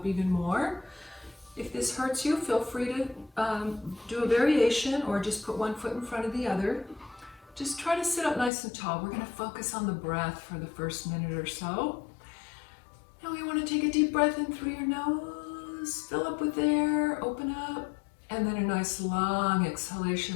even more. If this hurts you, feel free to do a variation or just put one foot in front of the other. Just try to sit up nice and tall. We're going to focus on the breath for the first minute or so. Now we want to take a deep breath in through your nose, fill up with air, open up, and then a nice long exhalation,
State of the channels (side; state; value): right; drops out; at 8.5 s